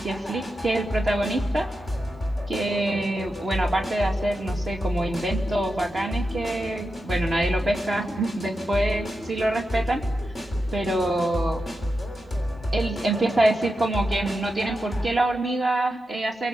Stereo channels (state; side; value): normal; both; correlation 0.89